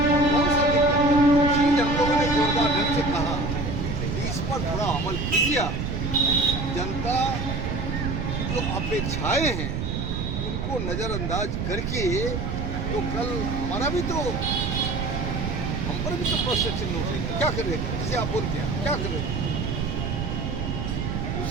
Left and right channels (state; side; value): noise; right; rumble, 2 dB below the sound